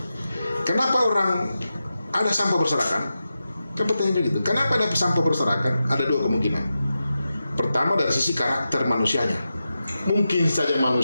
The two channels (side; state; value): both; inverted; correlation -0.91